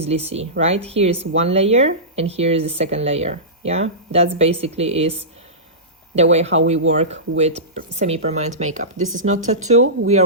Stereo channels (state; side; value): normal; both; correlation -0.19